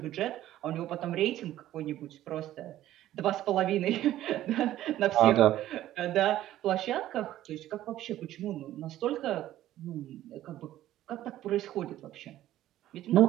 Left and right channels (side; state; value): left; quieter; 13.6 dB